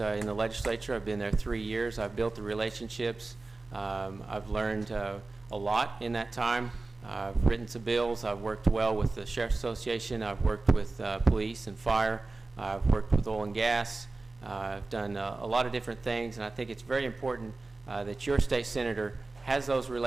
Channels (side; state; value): left; quieter; 3.4 dB